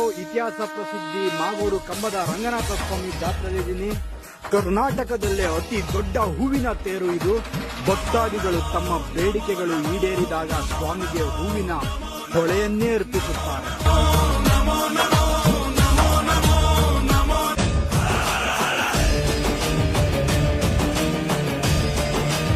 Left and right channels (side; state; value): both; identical; correlation 1.00